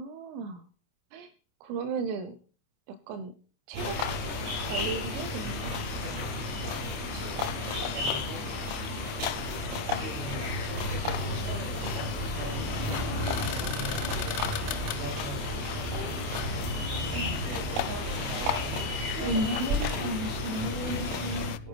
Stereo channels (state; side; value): late; left; 28 ms